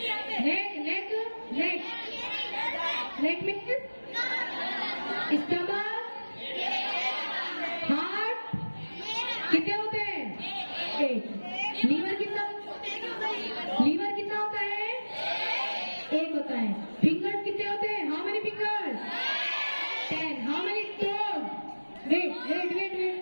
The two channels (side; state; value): both; inverted; correlation -1.00